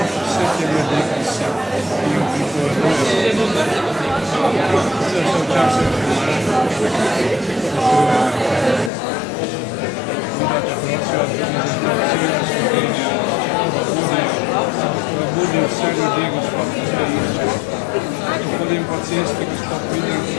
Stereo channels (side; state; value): right; drops out; at 8.9 s